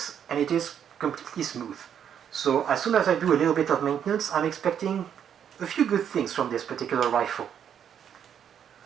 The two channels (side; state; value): left; quieter; 8.7 dB